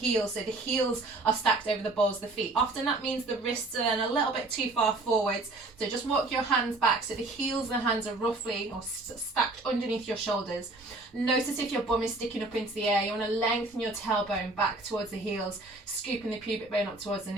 so the heels are stacked over the balls of the feet. Often that means the wrists are then a little bit too far forwards, so just walk your hands back so the heels and the hands are roughly or stacked underneath your shoulders. Notice if your bum is sticking up into the air, you want to lengthen your tailbone back towards the heels, scooping the pubic bone up towards the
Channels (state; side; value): quieter; left; 3.0 dB